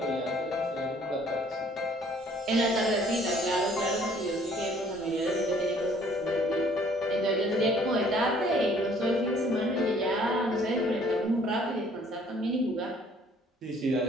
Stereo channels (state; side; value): normal; both; correlation 0.59